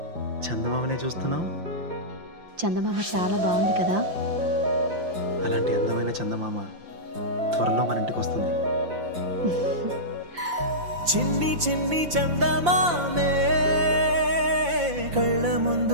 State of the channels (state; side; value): late; left; 5.8 ms